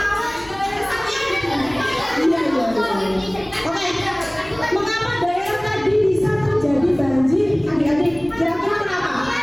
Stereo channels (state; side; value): noise; left; rumble, 23 dB below the sound